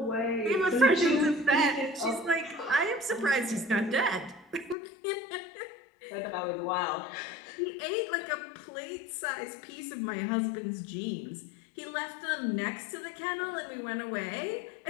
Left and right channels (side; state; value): right; drops out; at 4.8 s